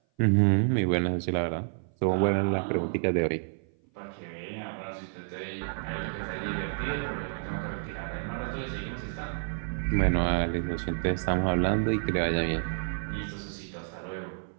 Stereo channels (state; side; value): silent; left; 56 dB below the other